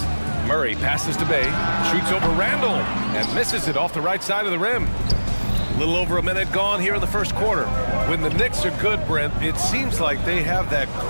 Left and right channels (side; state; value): both; inverted; correlation -1.00